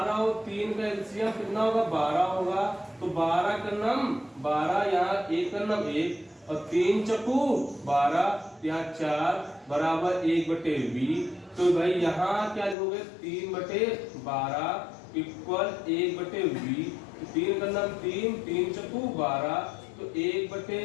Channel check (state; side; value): drops out; right; at 12.8 s